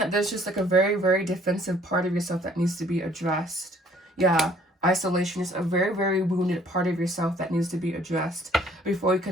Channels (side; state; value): both; normal; correlation 0.59